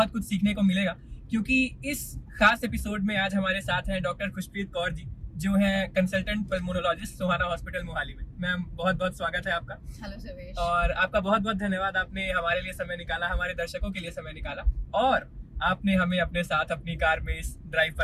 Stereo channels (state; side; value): identical; both; correlation 1.00